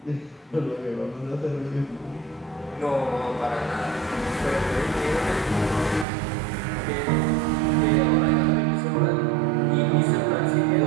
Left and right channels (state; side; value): drops out; left; at 6.1 s